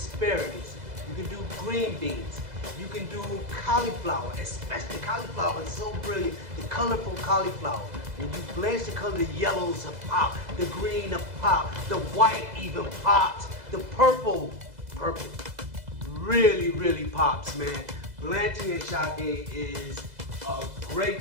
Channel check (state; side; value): late; left; 2.0 ms